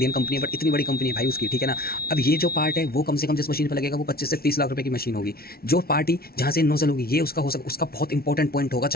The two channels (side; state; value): right; late; 0.44 ms